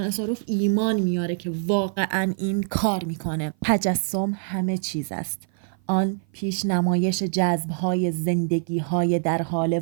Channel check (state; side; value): silent; left; 55 dB below the other